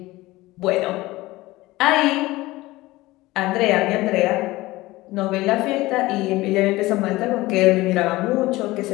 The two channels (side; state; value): right; quieter; 19.1 dB